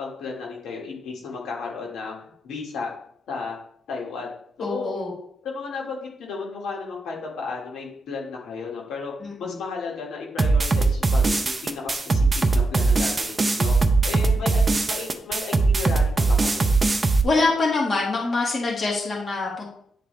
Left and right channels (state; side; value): normal; both; correlation 0.86